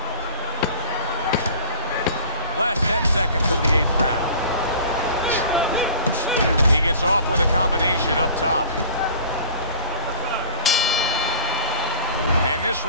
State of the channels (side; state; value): both; inverted; correlation -0.38